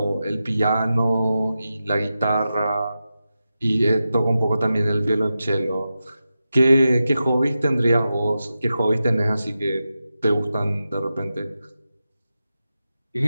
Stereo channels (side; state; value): both; inverted; correlation -0.91